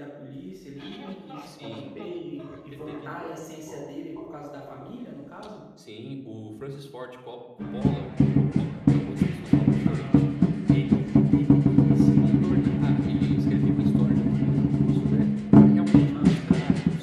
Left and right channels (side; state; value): both; identical; correlation 1.00